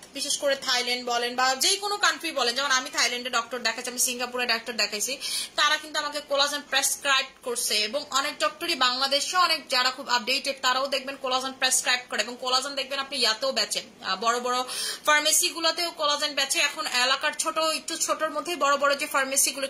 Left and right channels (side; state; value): both; identical; correlation 1.00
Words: বিশেষ করে থাইল্যান্ড বলেন বা যে কোনো কান্ট্রি বলেন, যেমন আমি থাইল্যান্ডে ডক্টর দেখাচ্ছি, আমি সিঙ্গাপুরে ডক্টর দেখাইছি, তারা কিন্তু আমাকে কোলাজেন প্রেসক্রাইব করছে। এবং অনেক ডক্টরই বাংলাদেশে অনেক যারা খুব আপডেটেড তারাও দেখবেন কোলাজেন প্রেসক্রাইব করে, এবং কোলাজেন দেখবেন আপনি ইয়াতেও বেচেন, বড় বড় ফার্মেসি গুলোতেও কোলাজেন বেচে। এখন এলাকার ছোট একটু ছোটর মধ্যেই বড় বড় যে ফার্মেসি গুলো